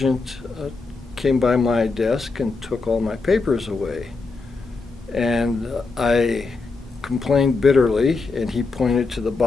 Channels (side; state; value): right; quieter; 4.1 dB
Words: came by my desk and took all my papers away. And I complained bitterly, and he pointed to the